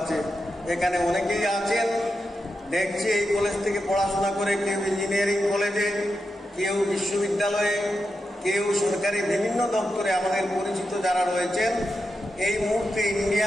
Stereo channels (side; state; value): both; normal; correlation 0.88